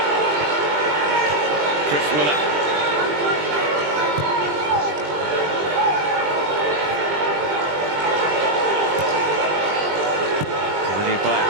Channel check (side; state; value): left; late; 20 ms